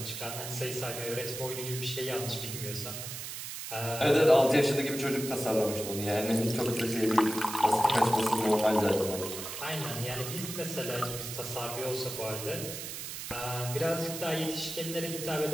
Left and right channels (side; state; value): right; noise; hiss, 7 dB below the sound